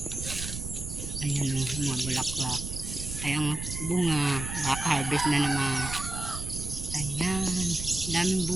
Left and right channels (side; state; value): right; noise; rumble, 6 dB below the sound